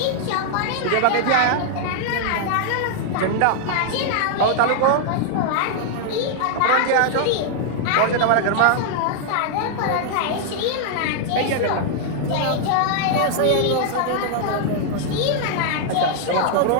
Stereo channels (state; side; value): different; both; correlation 0.00